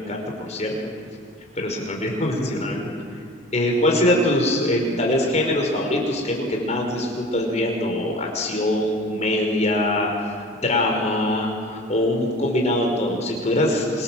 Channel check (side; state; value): both; normal; correlation 0.41